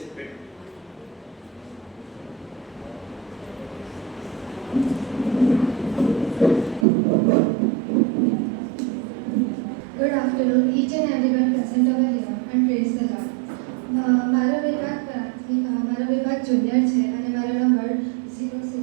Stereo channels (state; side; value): drops out; left; at 6.9 s